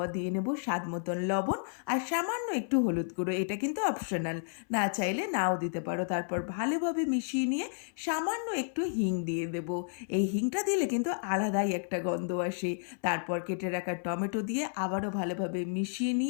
দিয়ে নেব স্বাদ মতন লবণ আর সামান্য একটু হলুদ গুঁড়ো, এটা কিন্তু অপশনাল, না চাইলে নাও দিতে পারো। তারপর ভালোভাবে মিশিয়ে নিয়ে সামান্য একটু হিং দিয়ে দেব। এই হিংটা দিলে কিন্তু আলাদাই একটা গন্ধ আসে। তারপর কেটে রাখা টমেটো দিয়ে আবারও ভালোভাবে মিশিয়ে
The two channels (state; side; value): silent; right; 57 dB below the other